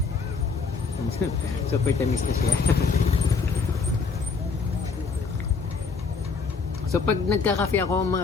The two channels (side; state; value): right; quieter; 4.9 dB